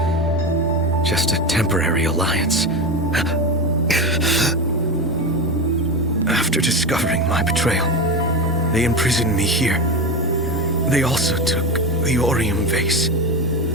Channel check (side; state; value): both; normal; correlation 0.19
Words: Just a temporary alliance. After discovering my betrayal, they imprisoned me here. They also took the Orium vase.